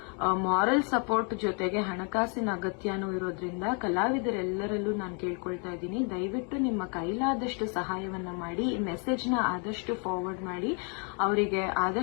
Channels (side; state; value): right; quieter; 37.6 dB